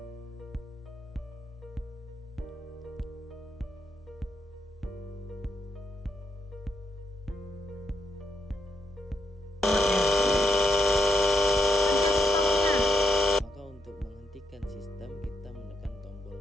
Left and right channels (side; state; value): both; normal; correlation 0.79